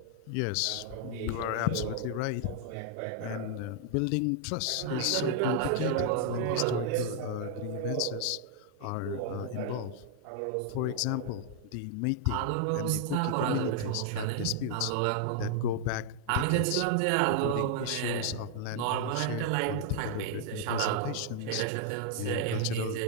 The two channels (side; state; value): both; different; correlation 0.00